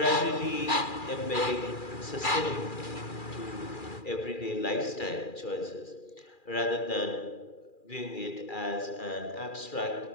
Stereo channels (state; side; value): late; right; 2.4 ms